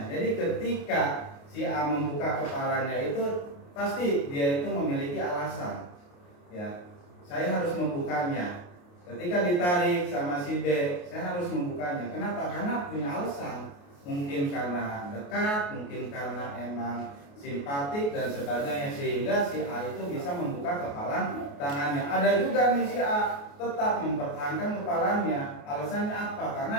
Jadi ketika si A membuka kepalanya itu pasti dia itu memiliki alasan. Ya, saya harus membukanya. Ketika ditarik sama si B, saya harus membukanya. Kenapa? Karena punya alasan. Mungkin karena dekat, mungkin karena emang simpatik dan sebagainya, sehingga si A itu bisa membuka kepalan tangannya. Ada juga nih si A tetap mempertahankan kepalanya. Alasannya apa?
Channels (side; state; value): right; late; 28 ms